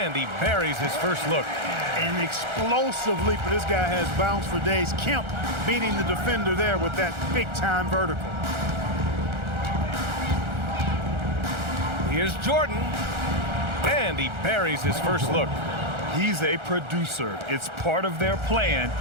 he buries his first look. An explosive leaper. This guy has bounce for days. Kemp beating the defender there with that big-time vertical. Here's Jordan, and he buries his first look. He's a producer. It's part of their plan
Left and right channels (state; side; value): late; left; 1.4 ms